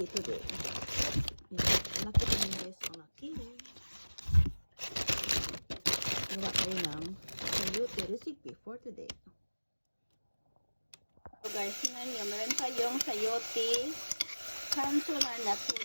today. Ayan, laki pa nyo guys, ang laki. Gawa kayo ng sayote recipe for today. So guys, tingnan nyo, meron tayong sayote kanso na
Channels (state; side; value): inverted; both; correlation -1.00